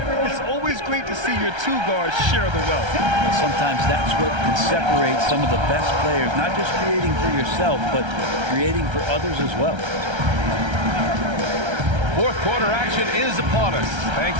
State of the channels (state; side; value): late; left; 1.3 ms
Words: It's always great to see your 2 guards share the wealth. Well, sometimes that's what can separate some of the best players, not just creating for yourself, but creating for others as well. 4th quarter action is upon us.